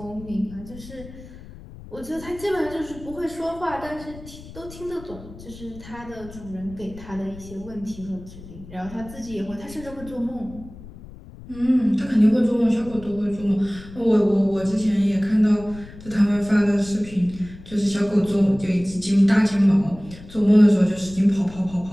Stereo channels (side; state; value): left; noise; rumble, 17 dB below the sound